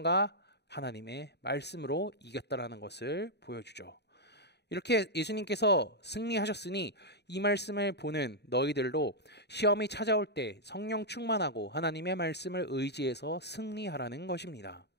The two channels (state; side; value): late; right; 0.49 ms